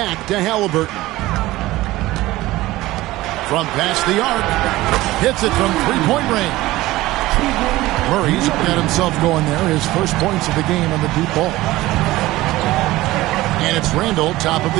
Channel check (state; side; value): quieter; left; 17.8 dB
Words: to Halliburton. From past the arc. Hits it from 3-point range. Murray's got himself going there. His first points of the game on the deep ball. And it's Randall, top of the